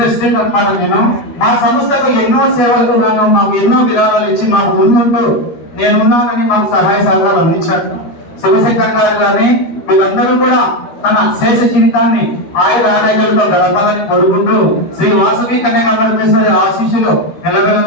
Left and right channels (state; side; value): late; right; 13 ms